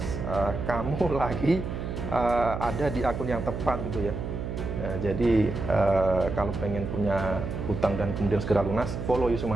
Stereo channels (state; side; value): noise; right; hum, 5 dB below the sound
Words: kamu lagi ada di akun yang tepat gitu ya. Jadi kalau pengen punya hutang dan kemudian segera lunas, follow Yusuf